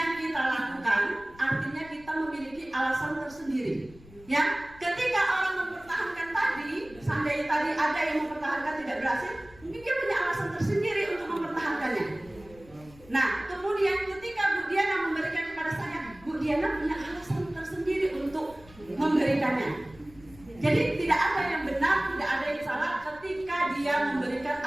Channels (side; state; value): left; noise; rumble, 23 dB below the sound